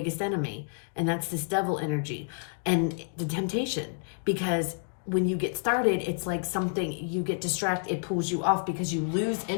enemy, and that's this devil energy and the temptation, because when you get started, it's like something, you get distracted, it pulls you off because you lose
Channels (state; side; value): silent; right; digital silence